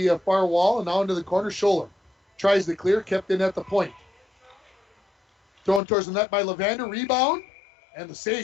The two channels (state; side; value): drops out; right; at 5.8 s